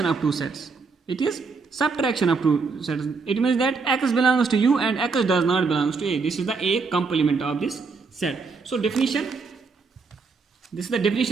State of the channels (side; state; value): left; quieter; 4.6 dB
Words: of two sets. It is subtraction of two sets. It means that X belongs to U and X does not belongs to A. This is the A complement of this set. So definition, this is the